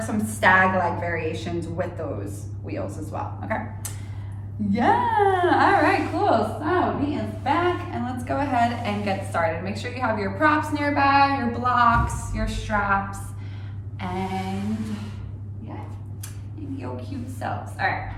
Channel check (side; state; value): both; identical; correlation 1.00